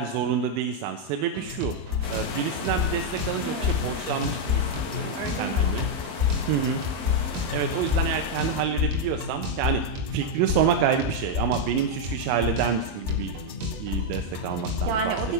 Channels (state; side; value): late; left; 22 ms